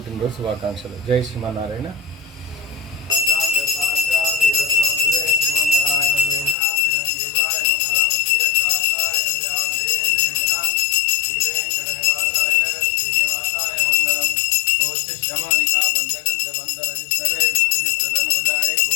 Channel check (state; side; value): drops out; right; at 6.6 s